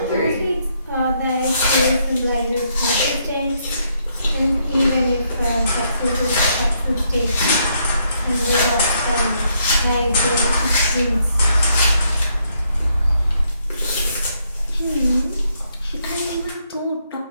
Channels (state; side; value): inverted; both; correlation -0.74